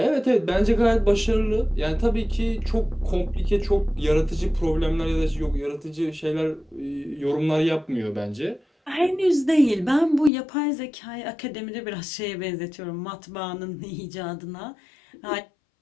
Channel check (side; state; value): right; drops out; at 10.3 s